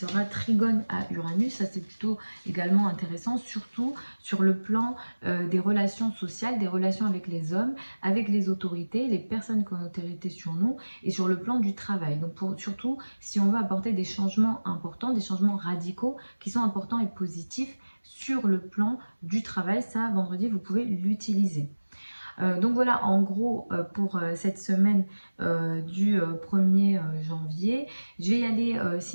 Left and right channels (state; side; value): inverted; both; correlation -1.00